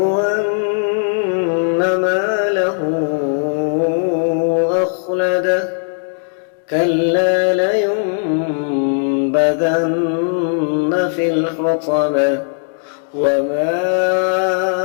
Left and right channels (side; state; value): right; silent; digital silence